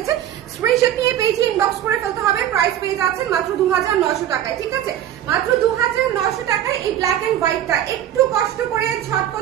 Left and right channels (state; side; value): quieter; left; 11.3 dB